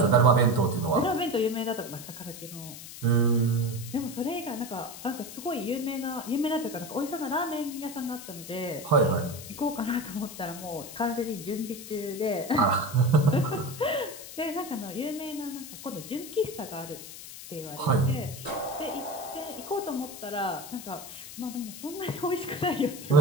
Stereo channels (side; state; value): left; noise; hiss, 12 dB below the sound